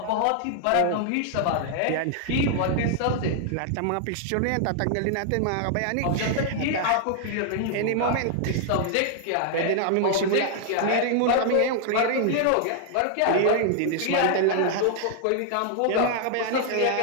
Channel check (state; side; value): different; both; correlation 0.00